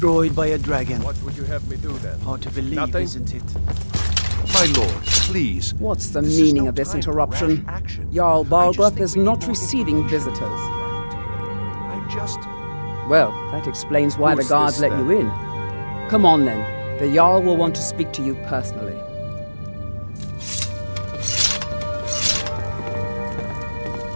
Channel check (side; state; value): both; inverted; correlation -1.00